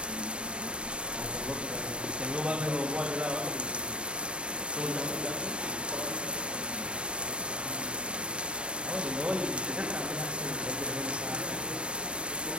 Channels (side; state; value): left; late; 0.054 ms